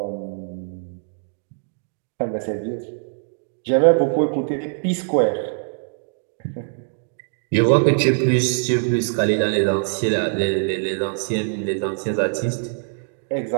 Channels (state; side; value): silent; left; digital silence